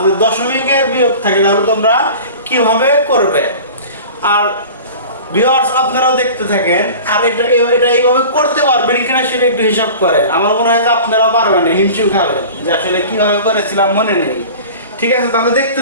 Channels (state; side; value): inverted; both; correlation -0.39